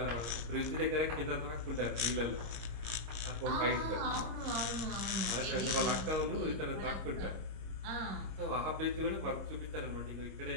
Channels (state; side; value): late; left; 25 ms